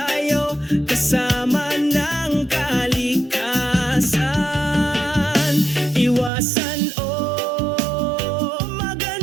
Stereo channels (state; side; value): drops out; left; at 6.3 s